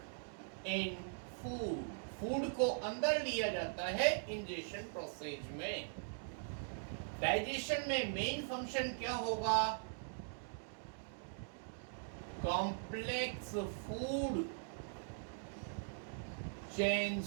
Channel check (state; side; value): silent; left; digital silence